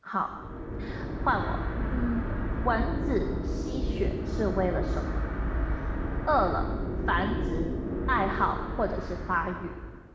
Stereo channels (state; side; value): identical; both; correlation 1.00